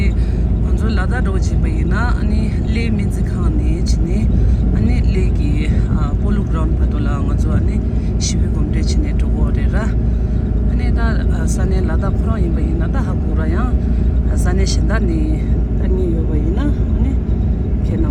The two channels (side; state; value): both; identical; correlation 1.00